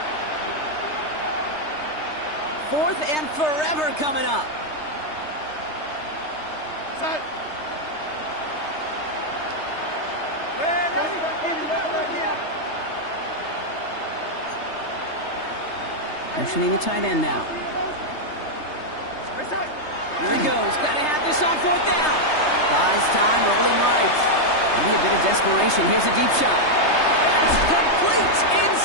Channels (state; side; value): late; right; 3.3 ms